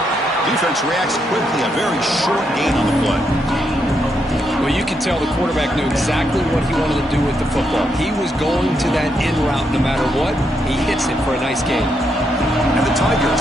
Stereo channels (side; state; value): both; normal; correlation 0.79